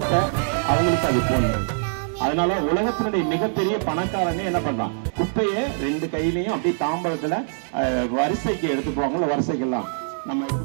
அவங்களுக்கு அது போடணும். அதனால உலகத்தினுடைய மிகப்பெரிய பணக்காரனே என்ன பண்றான்? குப்பையை 2 கையிலையும் அப்படியே தாம்பரத்துல வரிசைக்கு எடுத்து போவாங்கல்ல, வரிசைக்கெல்லாம் நம்ம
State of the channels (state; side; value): silent; left; 63 dB below the other